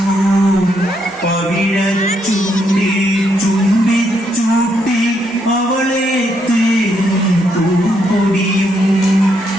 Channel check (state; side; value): normal; both; correlation 0.76